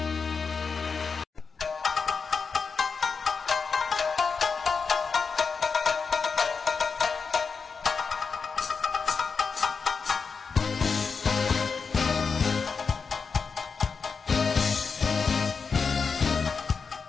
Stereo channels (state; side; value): quieter; right; 5.3 dB